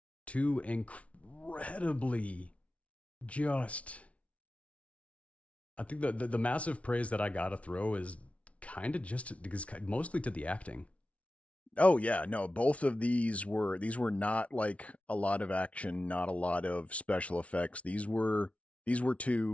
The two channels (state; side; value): late; right; 0.064 ms